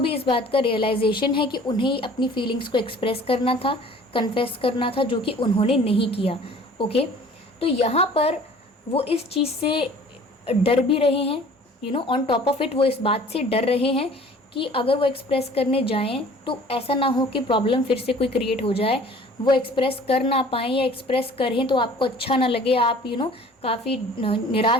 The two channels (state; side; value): normal; both; correlation 0.49